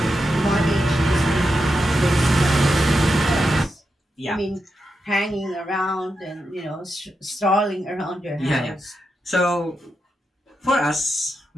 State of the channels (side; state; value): both; normal; correlation 0.87